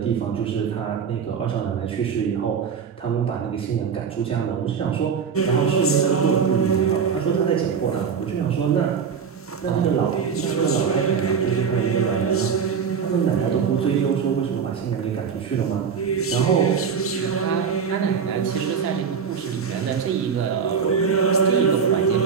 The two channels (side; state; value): left; quieter; 6.6 dB